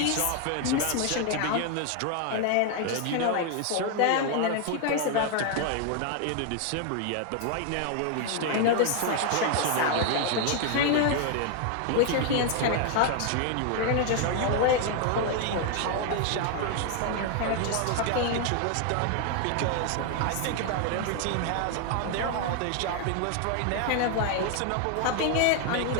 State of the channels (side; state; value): both; different; correlation 0.00